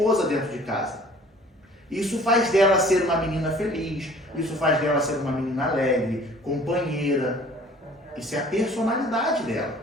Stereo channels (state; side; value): normal; both; correlation 0.51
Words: dentro de casa. Isso faz dela ser uma menina feliz, isso faz dela ser uma menina alegre, companheira. Isso é a personalidade dela,